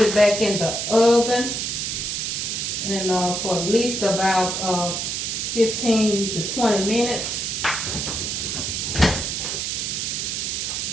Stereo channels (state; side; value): noise; right; hiss, 2 dB below the sound